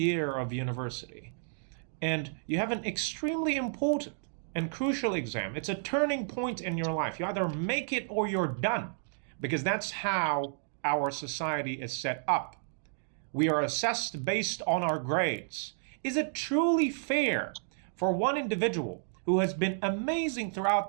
of university, and you have an extremely important and crucial exam, it's a turning point in your life. You either make it or you're done, because that's how our society is set up. We are assessed based on our grades. Is it truly fair for one individual who has been amazing throughout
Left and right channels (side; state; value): left; silent; digital silence